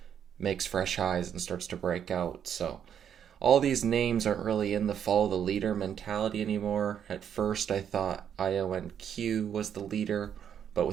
makes fresh highs and starts to break out. So all these names aren't really in the follow the leader mentality anymore. At first I thought IONQ was the leader, but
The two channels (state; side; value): quieter; left; 8.7 dB